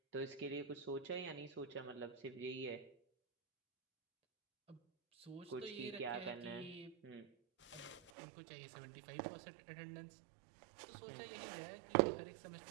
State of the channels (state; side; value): drops out; left; at 8.1 s